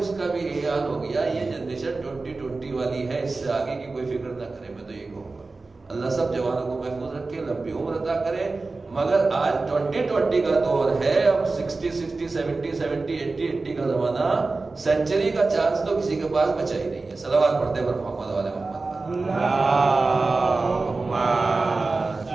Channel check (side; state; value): left; quieter; 3.7 dB